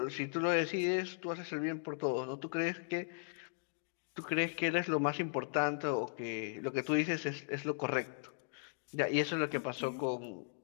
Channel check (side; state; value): right; silent; digital silence